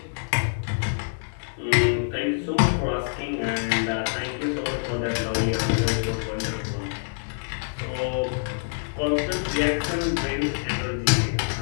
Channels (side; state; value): right; silent; 61 dB below the other